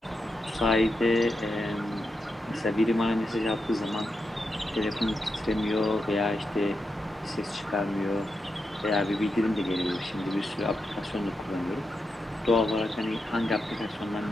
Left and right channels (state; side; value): normal; both; correlation 0.86